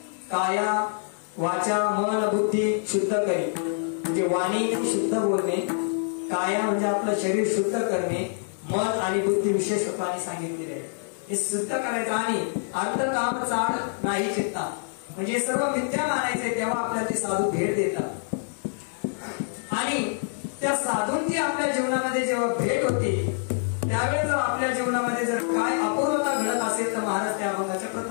काया वाचा मन बुद्धी शुद्ध करी, म्हणजे वाणी शुद्ध बोलणे, काया म्हणजे आपलं शरीर शुद्ध करणे, मन आणि बुद्धी विशेष रूपाने सांगितलेले आहे. हे शुद्ध करायचं आणि अर्थ काम चाड नाही चित्ता, म्हणजे सर्व मिथ्या मानायचे, तेव्हा आपल्याला ते साधू भेट देतात. आणि त्या साधूंची आपल्या जीवनामध्ये जेव्हा भेट होते त्यावेळेस जर आपल्या जीवनामध्ये जर काय अपूर्वता घडत असेल तर महाराज त्या अभंगाच्या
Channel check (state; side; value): silent; right; digital silence